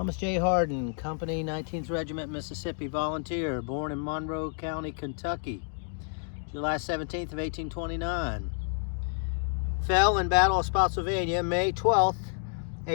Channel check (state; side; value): silent; right; 58 dB below the other